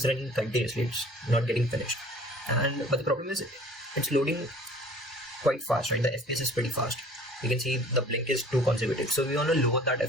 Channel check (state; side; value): normal; both; correlation 0.49